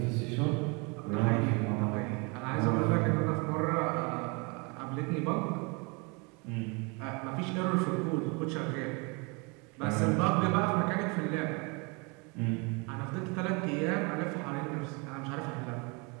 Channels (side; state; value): left; quieter; 30.5 dB